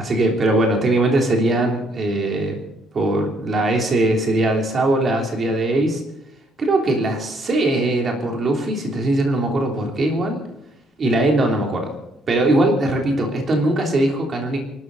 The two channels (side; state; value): both; normal; correlation 0.69